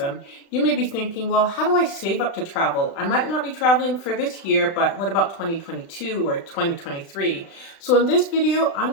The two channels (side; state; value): right; late; 36 ms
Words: you may be thinking, well, how do I save up to travel? I might not be traveling for this year, but what about 2022 or 2023? So in this video, I'm